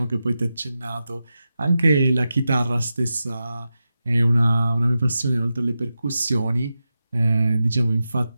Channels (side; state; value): both; inverted; correlation -0.90